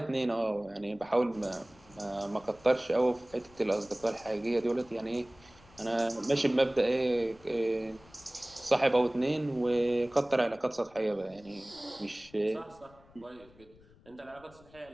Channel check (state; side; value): noise; left; rumble, 26 dB below the sound